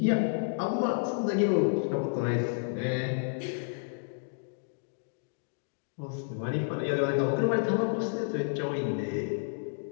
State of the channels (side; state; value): right; silent; digital silence